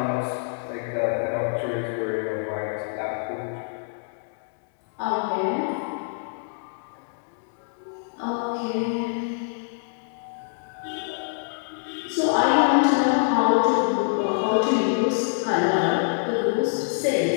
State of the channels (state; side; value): silent; right; digital silence